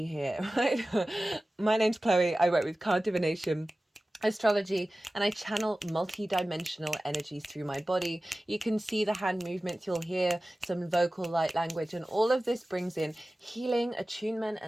here, right? My name's Chloe. I work with card divination, astrology, and I channel multi-dimensional energies through my body. You can see the hand movements, you'll hear some vocal light language, and all of this brings in healing, attunement,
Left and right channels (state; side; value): normal; both; correlation 0.96